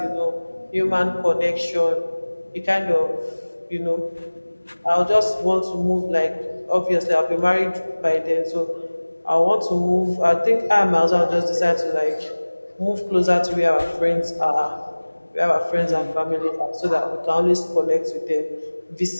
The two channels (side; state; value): both; inverted; correlation -1.00